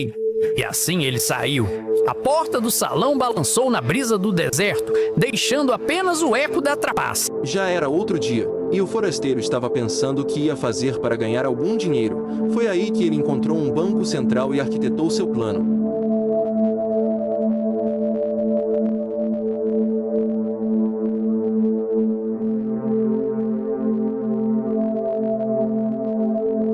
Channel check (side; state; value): both; identical; correlation 1.00